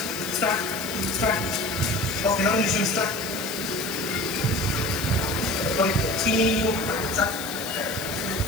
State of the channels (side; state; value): left; noise; hiss, 11 dB below the sound